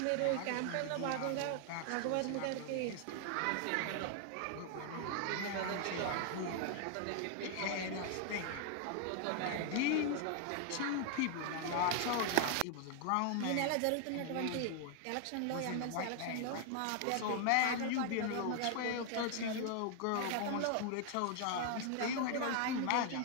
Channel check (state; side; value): different; both; correlation 0.00